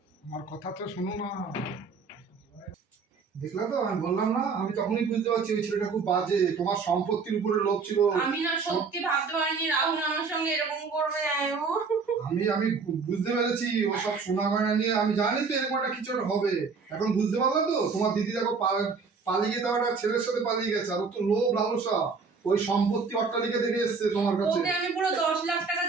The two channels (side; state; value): left; quieter; 4.9 dB